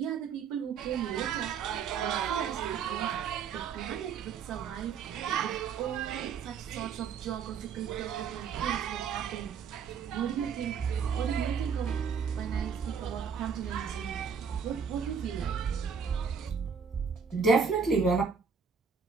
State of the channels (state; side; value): quieter; left; 6.2 dB